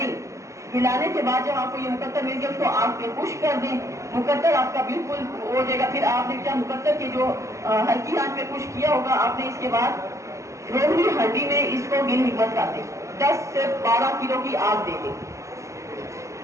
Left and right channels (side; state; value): left; late; 0.15 ms